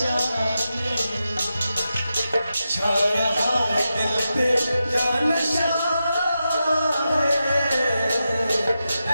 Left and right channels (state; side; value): inverted; both; correlation -0.89